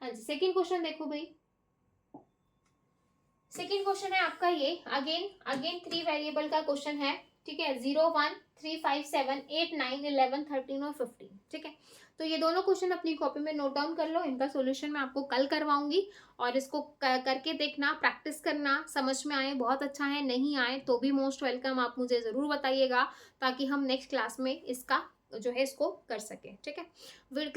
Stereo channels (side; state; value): both; identical; correlation 1.00